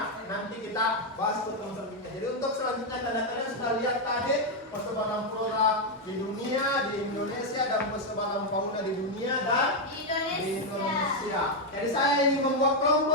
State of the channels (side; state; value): both; normal; correlation 0.02